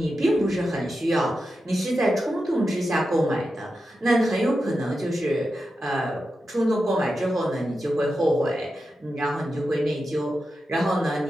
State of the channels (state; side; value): normal; both; correlation 0.90